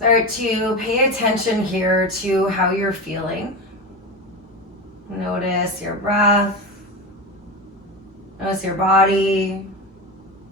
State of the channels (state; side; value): normal; both; correlation 0.22